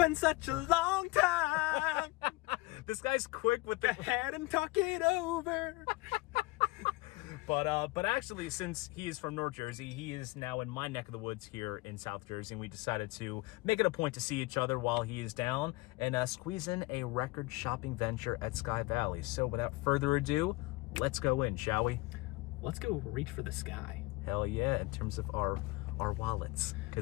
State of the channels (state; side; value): quieter; right; 22.2 dB